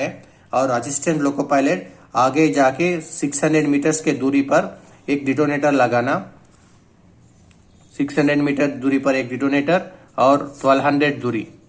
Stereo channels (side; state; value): both; identical; correlation 1.00